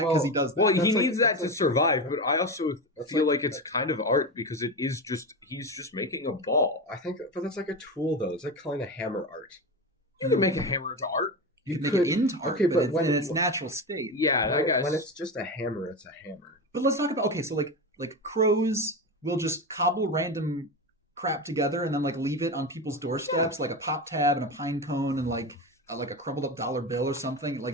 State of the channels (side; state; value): both; normal; correlation 0.20